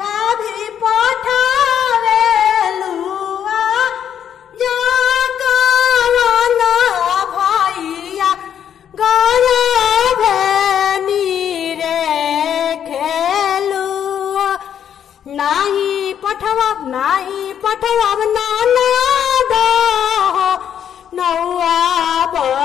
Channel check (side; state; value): right; quieter; 9.1 dB